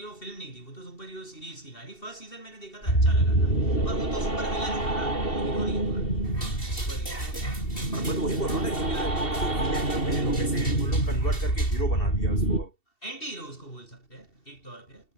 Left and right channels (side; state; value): right; late; 2.7 ms